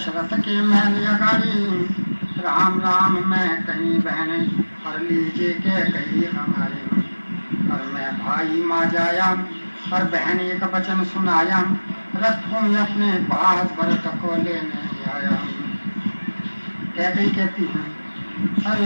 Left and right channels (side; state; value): both; inverted; correlation -1.00